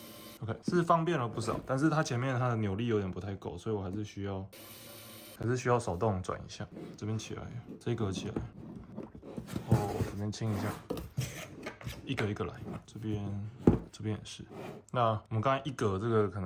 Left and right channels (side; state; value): both; identical; correlation 1.00